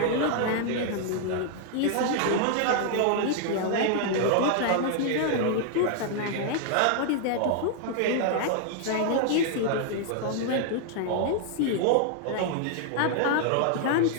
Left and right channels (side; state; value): both; different; correlation 0.00